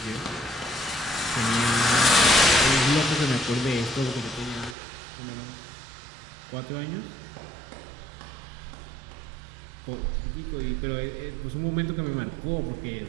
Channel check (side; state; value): left; drops out; at 4.8 s